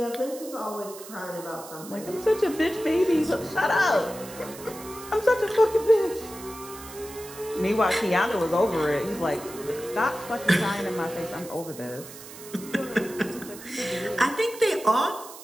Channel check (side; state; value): right; noise; hiss, 15 dB below the sound